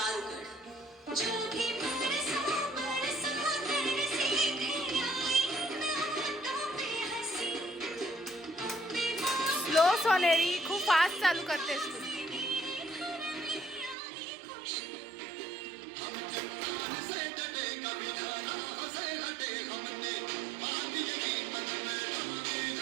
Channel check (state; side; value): drops out; left; at 14.0 s